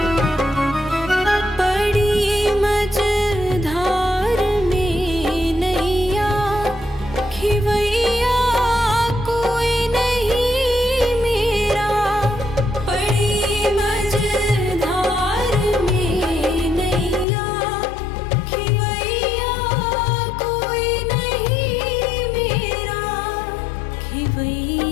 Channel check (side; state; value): right; drops out; at 17.2 s